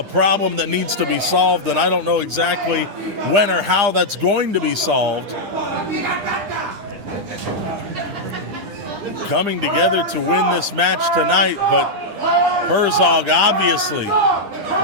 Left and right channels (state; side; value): late; left; 9.9 ms